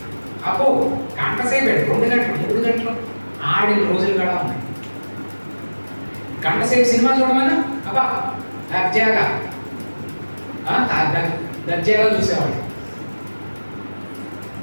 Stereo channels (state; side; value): inverted; both; correlation -1.00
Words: అబ్బో గంట సేపు 2 గంటలు 3 గంటలు ఆడిన రోజులు కూడా ఉన్నాయి. గంట సేపు సినిమా చూడమని అబ్బా దర్జాగా చూసేవాడిని.